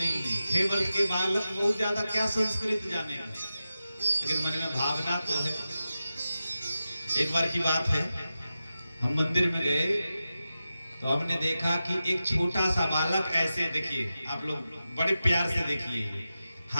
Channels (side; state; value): both; inverted; correlation -0.92